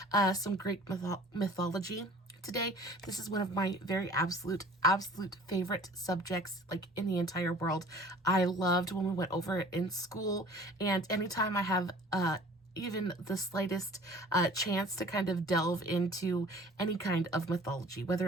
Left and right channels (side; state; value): both; normal; correlation 0.48